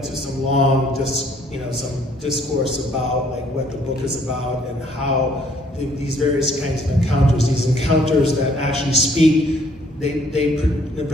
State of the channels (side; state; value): both; normal; correlation 0.63